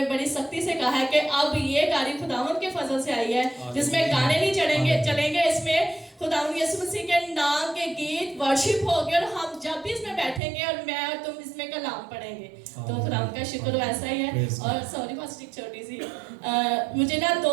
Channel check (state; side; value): drops out; left; at 10.4 s